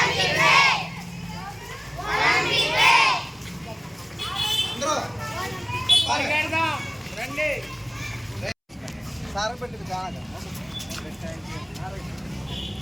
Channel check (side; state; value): both; identical; correlation 1.00